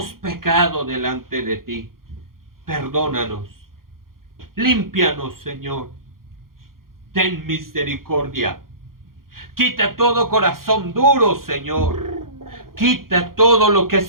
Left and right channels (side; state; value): left; late; 0.92 ms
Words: pecado delante de ti. Perdónanos. Límpianos, Señor. Ten misericordia. Quita todo corazón duro, Señor. Quita todo lo que